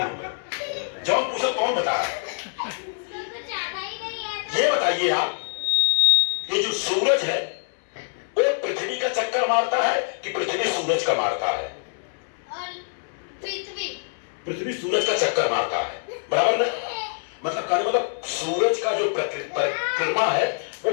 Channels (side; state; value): right; silent; 62 dB below the other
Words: जब पूछो कौन बता। ये बताइए आप, ये जो सूरज है वो पृथ्वी का चक्कर मारता है कि पृथ्वी सूरज का मारता है? पृथ्वी सूरज का चक्कर मारता है, बराबर ना? मतलब सूरज का जो परिक्रमा है वो